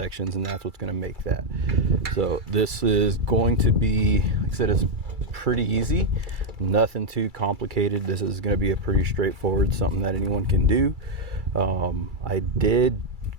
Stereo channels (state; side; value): late; left; 2.3 ms